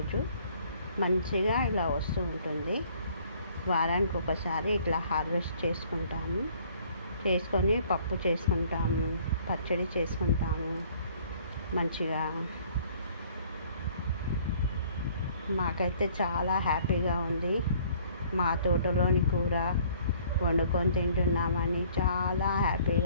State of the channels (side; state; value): both; inverted; correlation -0.58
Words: మంచిగా ఇలా వస్తూ ఉంటుంది. వారానికి ఒకసారి ఇట్లా హార్వెస్ట్ చేసుకొని పప్పు చేసుకుంటాము, పచ్చడి చేసుకుంటాము. మంచిగా మాకైతే చాలా హ్యాపీగా ఉంది. మా తోటలోని కూర వండుకొని తింటున్నామని చాలా